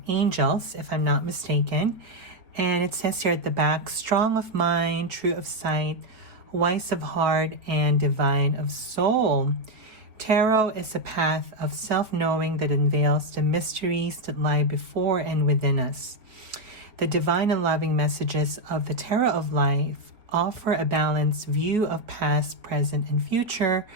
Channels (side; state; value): left; late; 4.4 ms